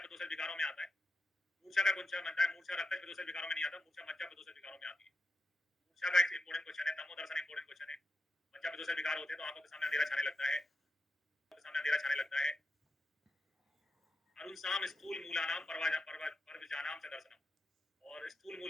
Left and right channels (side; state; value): both; normal; correlation 0.89